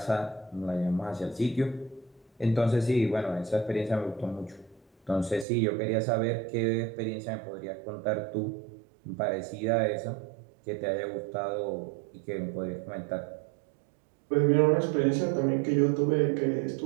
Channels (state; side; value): drops out; left; at 5.5 s